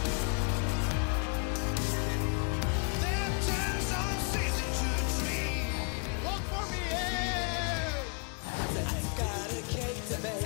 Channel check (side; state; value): right; quieter; 37.9 dB